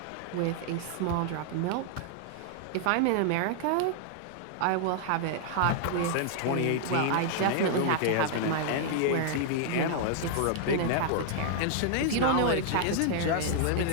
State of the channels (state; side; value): different; both; correlation 0.00